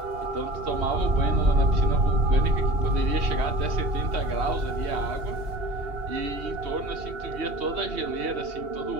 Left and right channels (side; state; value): left; late; 2.8 ms